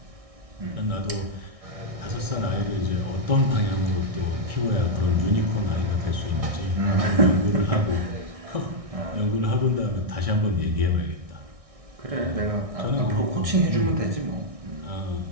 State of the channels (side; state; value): left; late; 1.6 ms